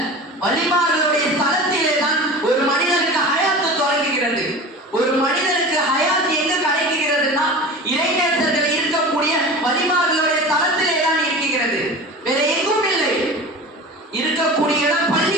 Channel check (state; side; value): normal; both; correlation 0.34